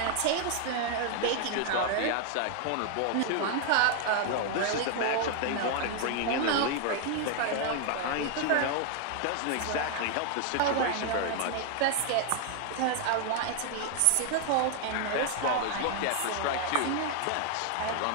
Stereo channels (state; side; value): different; both; correlation 0.00